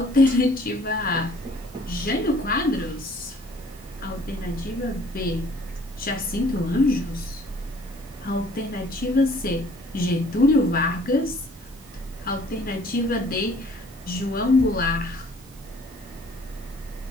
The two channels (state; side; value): normal; both; correlation 0.56